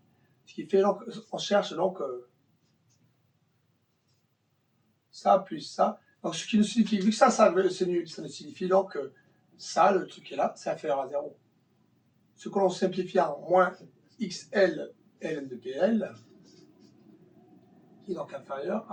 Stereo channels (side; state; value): both; identical; correlation 1.00